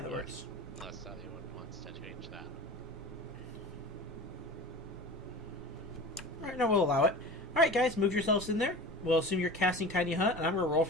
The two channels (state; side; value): normal; both; correlation 0.35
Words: works. Unless anyone wants to change that. Alright, no, we'll allow it. Alright, guys, move yourselves in there. We'll assume you're casting Tiny Hut, and I'm going to roll